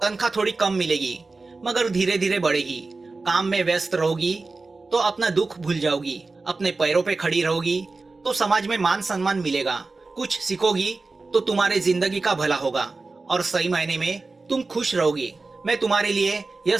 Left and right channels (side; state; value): left; quieter; 3.7 dB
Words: तनख्वाह थोड़ी कम मिलेगी, मगर धीरे धीरे बढ़ेगी। काम में व्यस्त रहोगी तो अपना दुख भूल जाओगी। अपने पैरों पे खड़ी रहोगी तो समाज में मान सम्मान मिलेगा। कुछ सीखोगी तो तुम्हारे जिंदगी का भला होगा और सही मायने में तुम खुश रहोगी। मैं तुम्हारे लिए यह